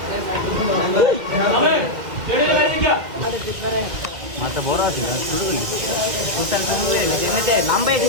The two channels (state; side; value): late; left; 1.8 ms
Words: মাথা বড় আছে না শুরু করলি তোর শুরু হয়ে গেছে এমনিতে নাম্বার